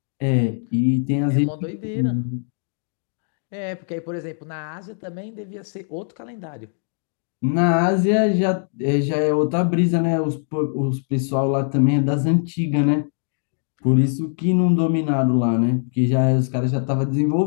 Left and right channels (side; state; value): right; silent; 64 dB below the other